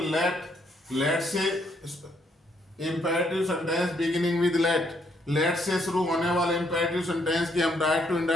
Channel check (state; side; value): normal; both; correlation 0.72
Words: let से imperative sentence beginning with let से शुरू होने वाले इंपेरेटिव सेंटेंस की हम डायरेक्ट टू